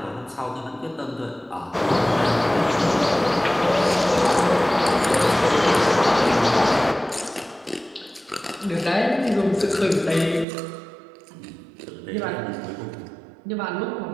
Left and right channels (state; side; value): drops out; left; at 10.5 s